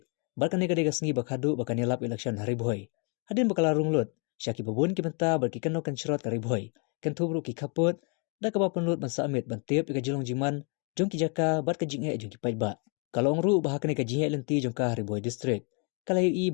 Barkan nega dega sengi bakhadu bakan yalap election Hariboy. Hadin bakala runglut. Sya ki babun ki benta barki kano kan syarot Hariboy. Kan tubru ki kaput. Da ka ba penlut ban samit ban tiap ka jilong jiman. Jong ki jaka bat ka jinghe jong ki pajba. Kalau ngru bahakane ka jihai lenti jong ka Hariboy district. Kalayo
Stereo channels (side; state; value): right; quieter; 35.5 dB